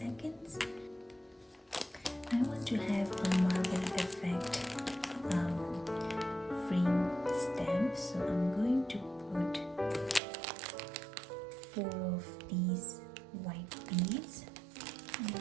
I want to have a marble effect frame stamp, so I'm going to put 4 of these white beads.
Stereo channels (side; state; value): left; drops out; at 10.2 s